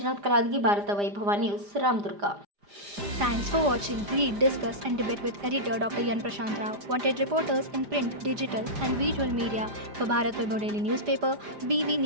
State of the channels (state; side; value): late; left; 5.0 ms